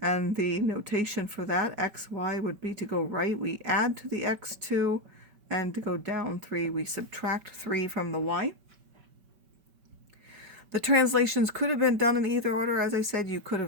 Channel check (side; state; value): left; late; 5.2 ms